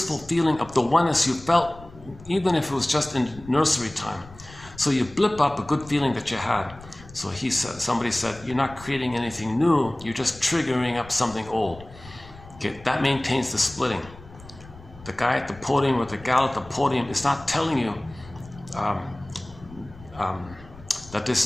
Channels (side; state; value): left; noise; rumble, 19 dB below the sound